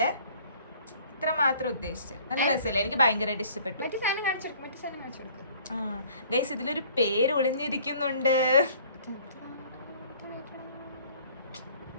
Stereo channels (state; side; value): inverted; both; correlation -0.54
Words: ഇത്ര മാത്രം ഉദ്ദേശിച്ചത്. നല്ല രസമല്ലേ? എനിക്ക് ഭയങ്കരമായിട്ട് ഇഷ്ടപ്പെട്ടു. ഗൈസ്, ഇതിലൊരു പേര് ഒളിഞ്ഞിരിക്കുന്നുണ്ട്.